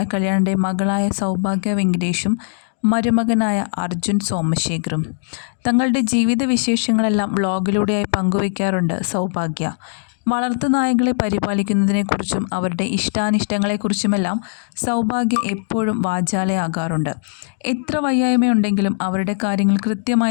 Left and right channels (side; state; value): right; silent; digital silence